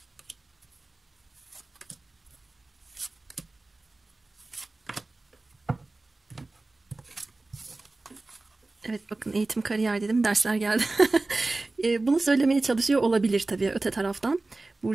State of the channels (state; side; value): quieter; left; 3.2 dB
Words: Evet, bakın eğitim kariyer dedim, dersler geldi. Bunu söylemeye çalışıyor olabilir tabii öte taraftan.